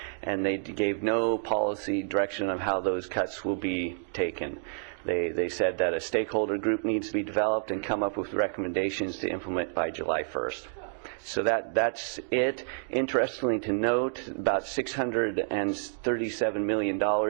and they gave no policy direction of how those cuts will be taken. They said that a stakeholder group needs to be developed and come up with recommendations to implement by July 1st. So that's it. Interestingly to note, about $637 million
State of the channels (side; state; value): left; silent; digital silence